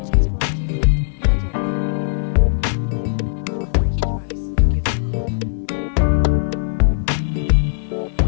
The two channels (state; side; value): silent; right; digital silence